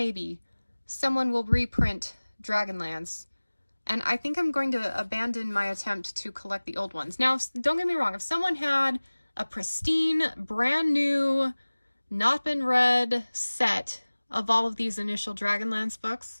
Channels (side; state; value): both; inverted; correlation -1.00